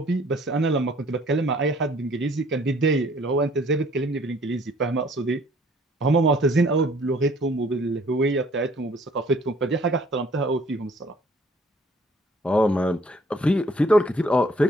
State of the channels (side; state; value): both; normal; correlation 0.58